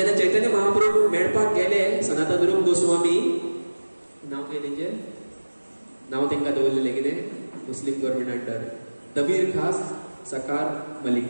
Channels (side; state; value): both; inverted; correlation -1.00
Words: चैतन्य महाप्रभू मेळपाक गेले सनातन रूप गोस्वामी, नाव कितें तेंचें, नाव तेंकां दवरलेलें कितें, मुस्लिम गव्हर्नमेंट अंडर दबीर खास सकार मलिक